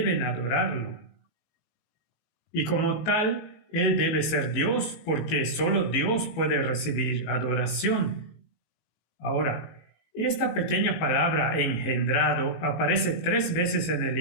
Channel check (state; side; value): late; right; 19 ms